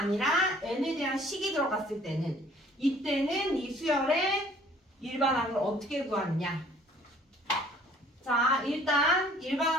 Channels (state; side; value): normal; both; correlation 0.55